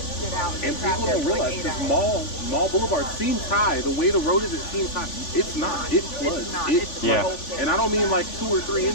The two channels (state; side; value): late; right; 3.5 ms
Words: get out. And people traffic don't for, like, realize 8 because hours. Mall Boulevard seems high. The way the road is, it seems high. It's not. It floods. It's not. It It's Yeah. floods. And I don't mean like 2 or 3